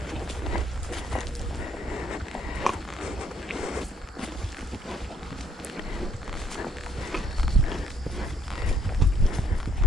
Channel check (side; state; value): both; normal; correlation 0.68